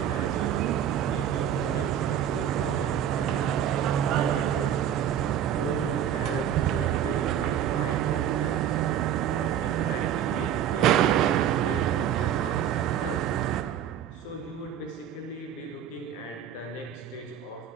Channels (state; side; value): quieter; left; 9.7 dB